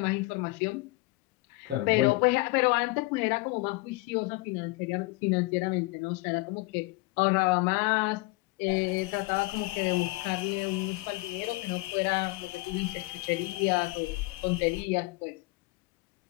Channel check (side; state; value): right; quieter; 22.5 dB